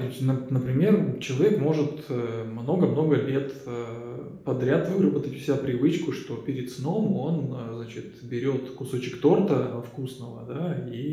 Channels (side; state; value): both; identical; correlation 1.00